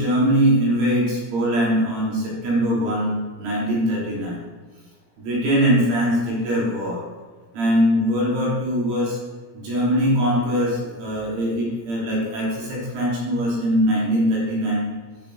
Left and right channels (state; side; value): late; left; 17 ms